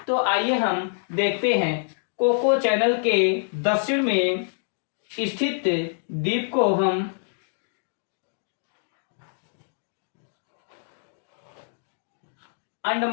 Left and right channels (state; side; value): silent; right; digital silence